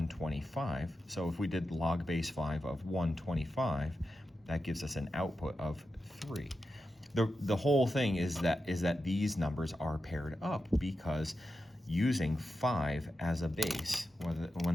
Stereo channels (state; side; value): normal; both; correlation 0.90